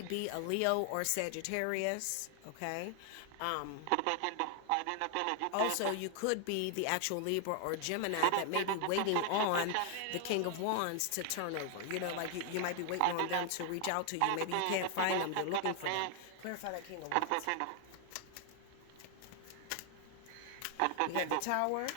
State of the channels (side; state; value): both; different; correlation 0.00